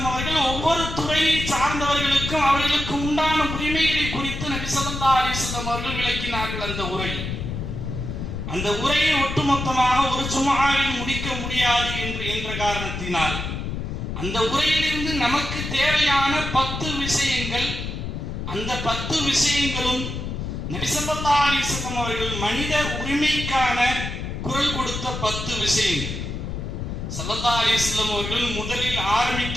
அவர்கள் ஒவ்வொரு துறையை சார்ந்தவர்களுக்கும் அவர்களுக்கு உண்டான உரிமைகளை குறித்து நபி ஸல்லல்லாஹு அலைஹி வஸல்லம் அவர்கள் விளக்கினார்கள். அந்த உரையை ஒட்டுமொத்தமாக ஒரு ஜும்ஆவில் முடிக்க முடியாது என்ற காரணத்தினால் அந்த உரையிலிருந்து நமக்கு தேவையான 10 விஷயங்கள், அந்த 10 விஷயங்களும் நபி ஸல்லல்லாஹு அலைஹி வஸல்லம் அவர்கள் மனித உரிமைக்கான குரல் கொடுத்த 10 விஷயங்கள். ஸல்லல்லாஹு அலைஹி வஸல்லம் அவர்கள் முதலில்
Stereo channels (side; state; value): left; noise; rumble, 5 dB below the sound